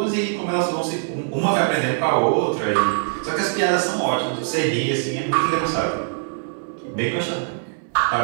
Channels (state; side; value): silent; left; digital silence